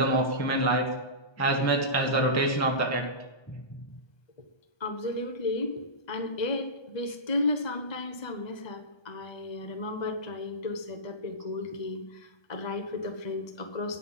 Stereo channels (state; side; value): late; right; 1.3 ms